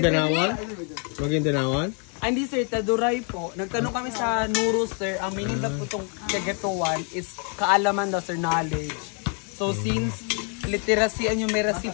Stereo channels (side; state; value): right; quieter; 39.0 dB